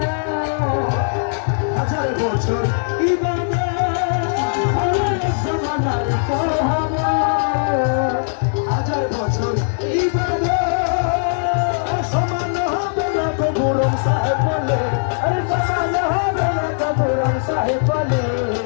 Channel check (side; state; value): right; silent; 66 dB below the other